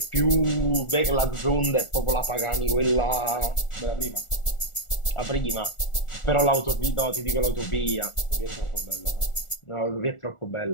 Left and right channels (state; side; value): late; right; 1.4 ms